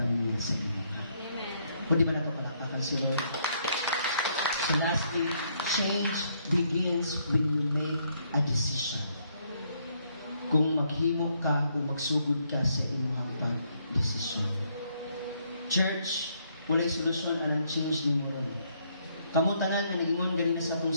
niya sa Ginoo. Kung di ba na ito palapakan si Lord? So lastly, change begins when you make a decision. Kung maghimo ka o magsugod ka sa imong pag-desisyon. Church, walay solusyon anang change ni mo ron. Kamu tanan nga nag-ingon ganina sa atong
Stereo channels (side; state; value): both; inverted; correlation -0.71